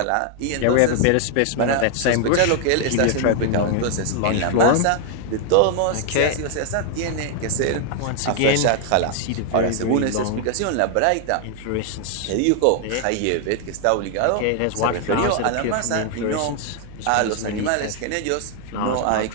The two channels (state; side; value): different; both; correlation 0.00